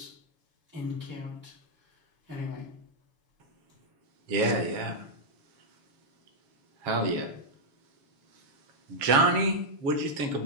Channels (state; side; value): late; left; 7.3 ms